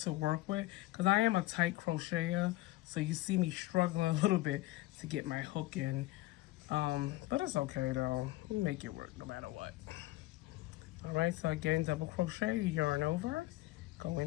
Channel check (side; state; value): right; quieter; 18.3 dB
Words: work with because I am a tight crocheter, so you see me struggling a little bit to get my hook in, but it's okay though. You make it work no matter what. All right, so again, double crochet, yarn over, go